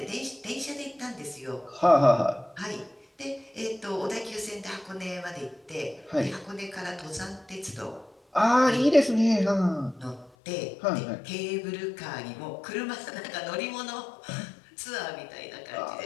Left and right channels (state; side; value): drops out; right; at 10.3 s